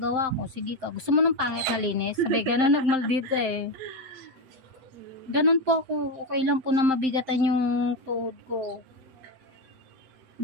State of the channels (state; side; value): late; left; 7.7 ms